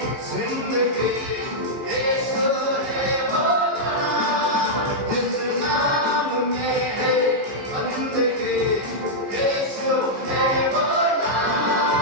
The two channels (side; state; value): left; late; 15 ms